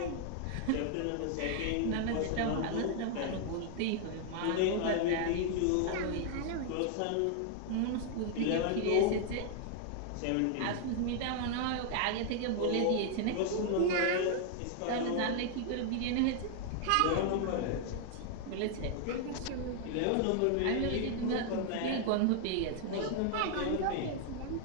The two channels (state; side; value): different; both; correlation 0.00